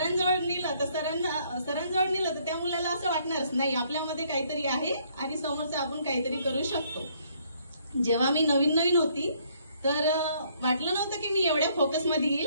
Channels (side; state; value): both; inverted; correlation -0.66